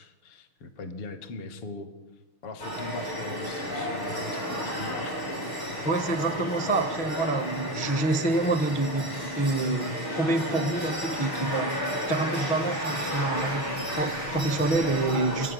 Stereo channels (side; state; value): right; late; 6.5 ms